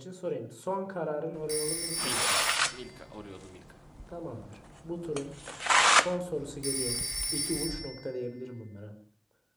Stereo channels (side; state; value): both; identical; correlation 1.00